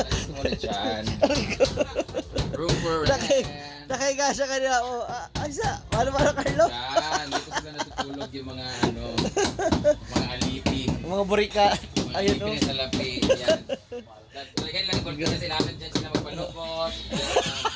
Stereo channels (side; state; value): both; identical; correlation 1.00